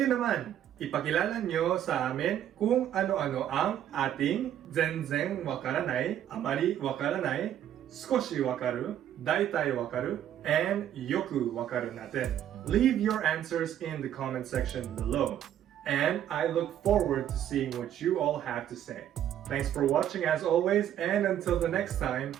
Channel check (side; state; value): left; quieter; 10.8 dB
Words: naman, ipakilala nyo sa amin kung ano-ano ang ating zenzen wakaranai, amari wakaranai, skoshi wakaru, daitai wakaru, and yoku wakaru natin. Leave your answers in the comment section below. And I look forward to seeing what you all have to say. Thanks for watching as always, and until the next time,